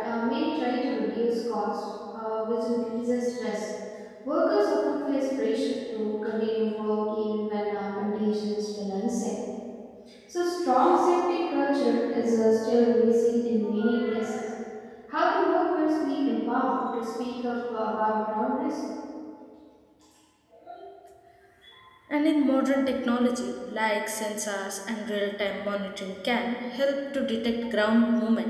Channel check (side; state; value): both; identical; correlation 1.00